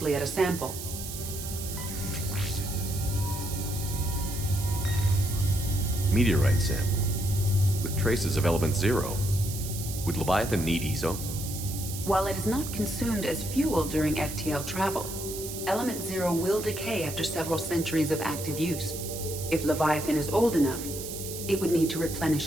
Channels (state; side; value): noise; right; hiss, 8 dB below the sound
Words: at a sample. Meteorite sample. With traces of element zero. Would Leviathan need ESO? While it is not consumed as fuel during FTL travel, Element Zero will decay after several centuries of active use. If Leviathan is old enough, it would need to